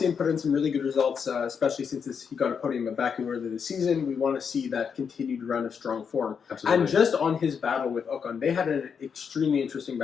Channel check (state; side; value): quieter; right; 6.6 dB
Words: him put in some really good results, especially since he got a podium at Baku earlier this season. We want to see that continued run of strong form. Absolutely. And just on his battle with Ocon, they had an extremely interesting